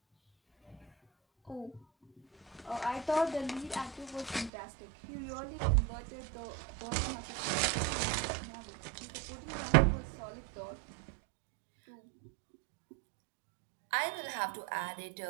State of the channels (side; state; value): left; drops out; at 4.5 s